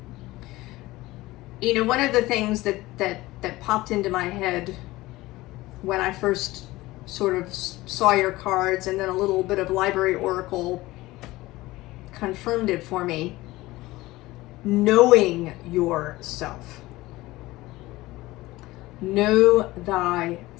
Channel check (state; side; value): quieter; right; 18.8 dB